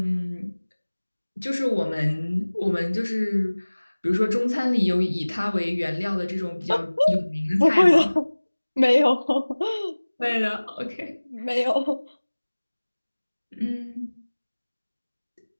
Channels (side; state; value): both; inverted; correlation -1.00